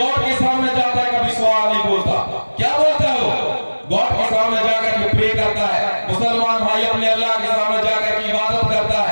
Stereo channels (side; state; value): both; inverted; correlation -1.00